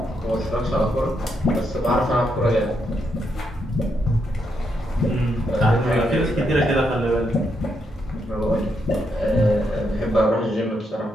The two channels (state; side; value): normal; both; correlation 0.79